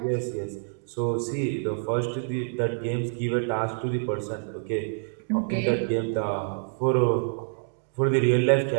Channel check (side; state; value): left; silent; digital silence